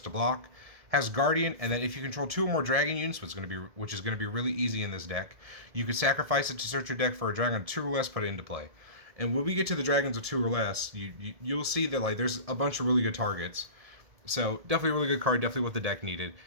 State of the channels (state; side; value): late; left; 1.7 ms